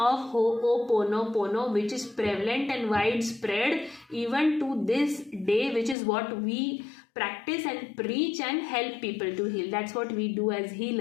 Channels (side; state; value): right; drops out; at 6.0 s